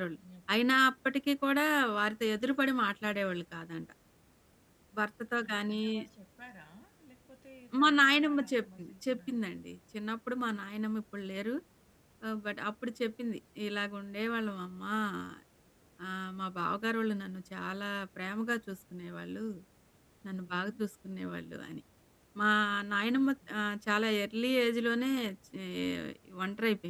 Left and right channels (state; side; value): identical; both; correlation 1.00